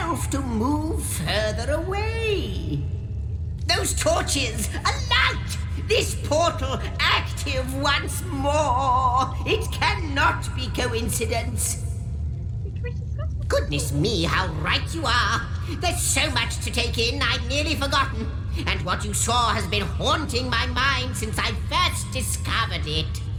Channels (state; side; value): identical; both; correlation 1.00